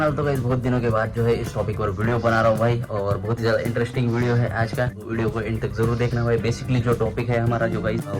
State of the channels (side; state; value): both; identical; correlation 1.00